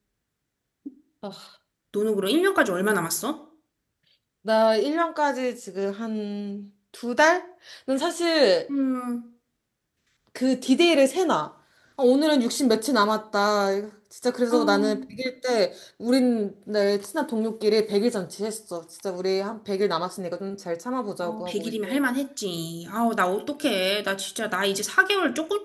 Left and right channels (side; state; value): both; identical; correlation 1.00